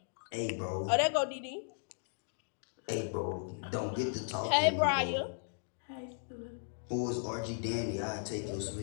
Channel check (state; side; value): silent; right; digital silence